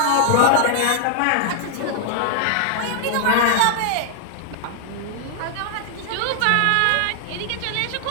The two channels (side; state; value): both; different; correlation -0.01